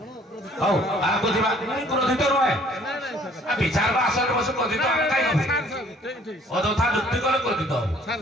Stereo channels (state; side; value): normal; both; correlation 0.57